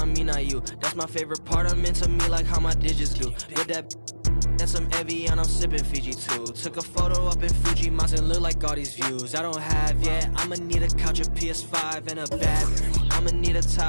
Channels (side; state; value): both; inverted; correlation -1.00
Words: me, not you. That's my favorite part, I'm into me like how my digits do. With that and some Evian, I'm sipping Fiji too. Took a photo up in Fuji Mountain, look like all these views I don't have yet. I'ma need a couch, a PS5, and a bed. I'ma need a